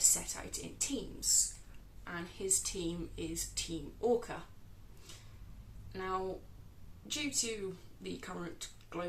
out in teams, and his team is Team Orca. Now, due to the current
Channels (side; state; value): both; identical; correlation 1.00